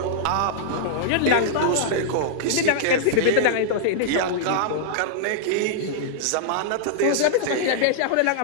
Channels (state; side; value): different; both; correlation -0.02